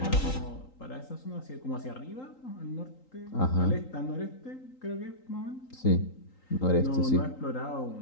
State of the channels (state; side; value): late; right; 3.8 ms